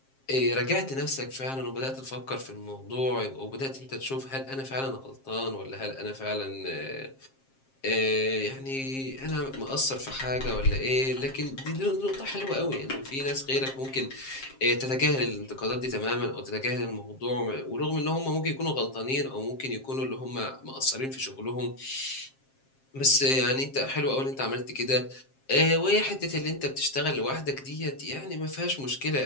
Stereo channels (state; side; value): late; right; 7.5 ms